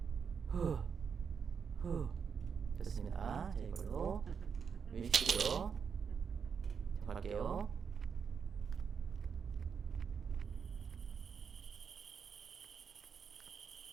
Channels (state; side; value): quieter; left; 6.5 dB